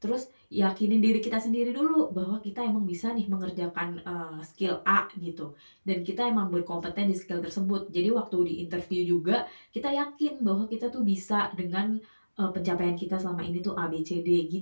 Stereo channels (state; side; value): inverted; both; correlation -1.00